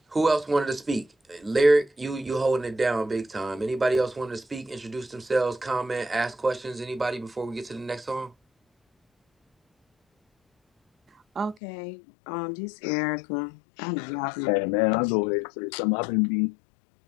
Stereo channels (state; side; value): drops out; right; at 11.6 s